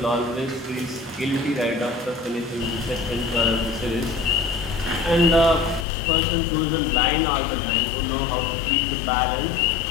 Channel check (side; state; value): right; drops out; at 5.9 s